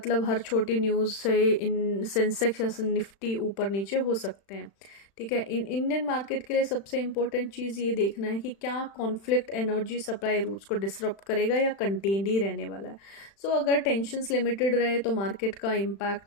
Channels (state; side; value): late; right; 36 ms